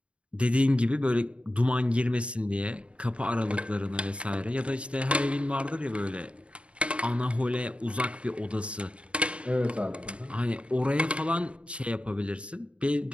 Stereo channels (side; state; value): left; late; 0.060 ms